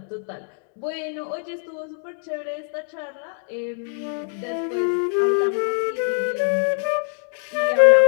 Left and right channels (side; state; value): right; silent; 55 dB below the other